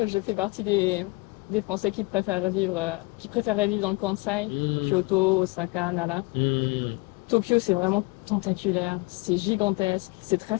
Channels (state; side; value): quieter; right; 25.5 dB